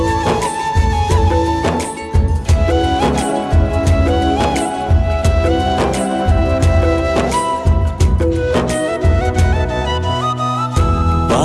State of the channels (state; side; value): identical; both; correlation 1.00